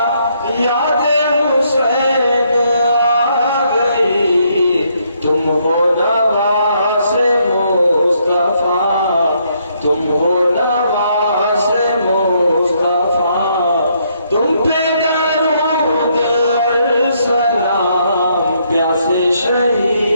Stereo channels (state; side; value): inverted; both; correlation -0.72